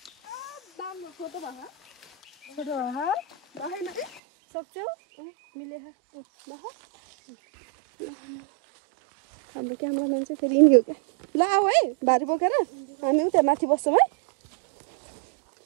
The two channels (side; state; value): left; drops out; at 4.2 s